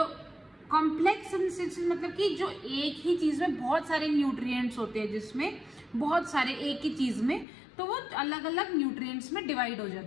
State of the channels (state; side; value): drops out; right; at 7.5 s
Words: कॉम्प्लेक्स सब्सटेंसेस मतलब कि जो एक ही चीज में बहुत सारे न्यूट्रिएंट्स होते हैं, जिसमें बहुत सारे एक ही चीज में, तो वो अलग अलग न्यूट्रिएंट्स में डिवाइड हो